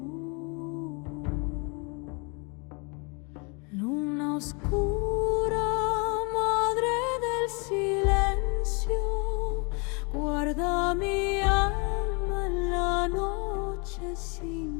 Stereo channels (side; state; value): right; quieter; 32.7 dB